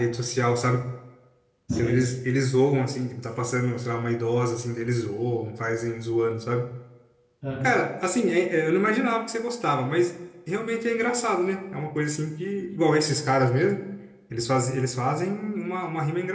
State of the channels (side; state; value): both; identical; correlation 1.00